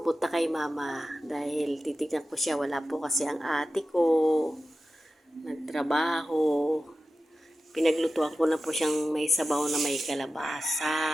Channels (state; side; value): normal; both; correlation 0.94